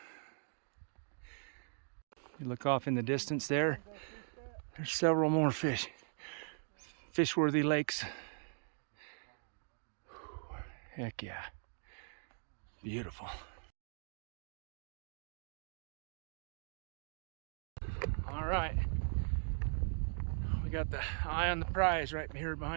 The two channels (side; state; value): left; silent; 51 dB below the other